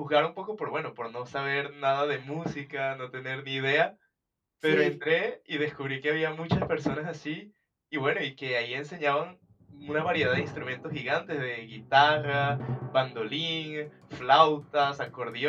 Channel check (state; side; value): identical; both; correlation 1.00